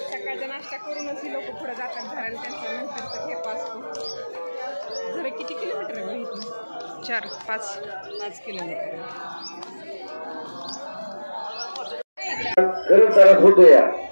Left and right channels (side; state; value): both; inverted; correlation -1.00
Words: सकाळचा नाश्ता करूनच ही लोक पुढे जातात घराला. त्यांचा नंतरचा ठेपा असतो. जरा किती किलोमीटर आहे इथून? 4-5 किलोमीटर.